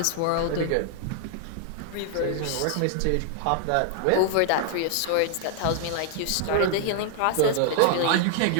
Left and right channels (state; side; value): different; both; correlation 0.00